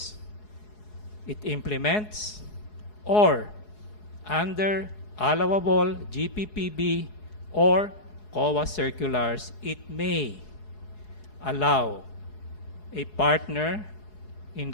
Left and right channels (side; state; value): right; late; 4.7 ms